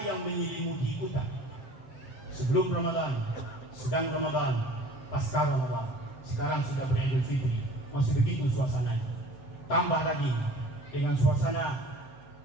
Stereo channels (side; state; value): right; late; 7.7 ms